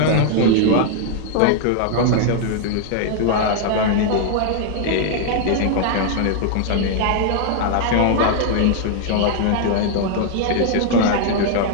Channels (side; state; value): both; different; correlation 0.00